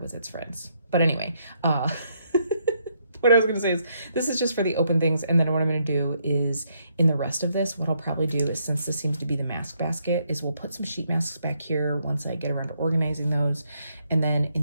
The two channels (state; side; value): inverted; both; correlation -0.74